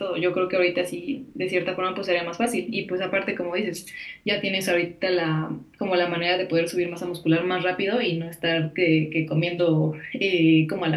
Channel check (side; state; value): both; identical; correlation 1.00